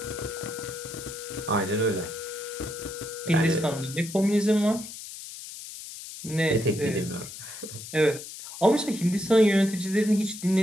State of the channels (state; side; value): noise; left; hiss, 12 dB below the sound